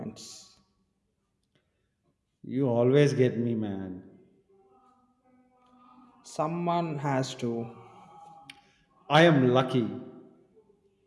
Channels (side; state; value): both; identical; correlation 1.00